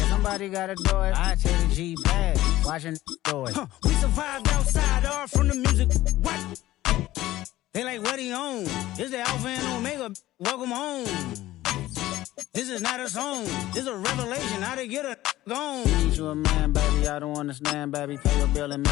somebody gotta do it. I take the G bag. Watching do it. We survived outside, all from the music. What? They like, what he on? This the Alpha and Omega. Welcome home. This is not a song. This is a revelation. How to get a gone. Need you a man, baby. I don't understand, baby. Pay your bill and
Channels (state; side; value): quieter; right; 15.8 dB